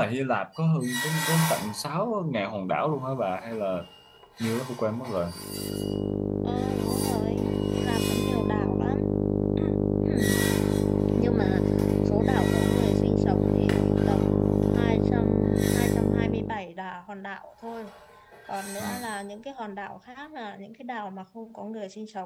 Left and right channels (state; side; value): identical; both; correlation 1.00